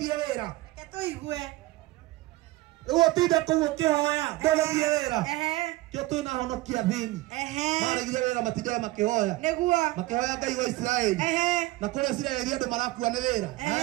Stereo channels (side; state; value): left; quieter; 19.2 dB